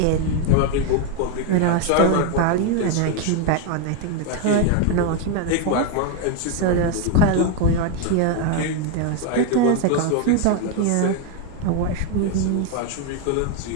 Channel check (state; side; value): different; both; correlation 0.01